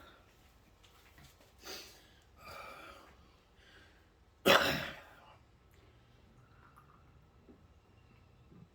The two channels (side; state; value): both; identical; correlation 1.00